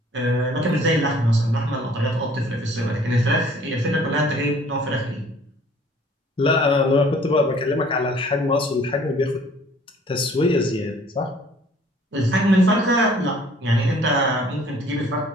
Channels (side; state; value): both; normal; correlation 0.55